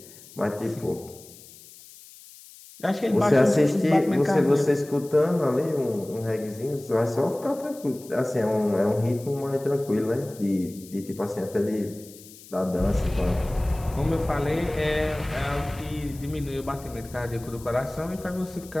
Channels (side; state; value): left; noise; hiss, 20 dB below the sound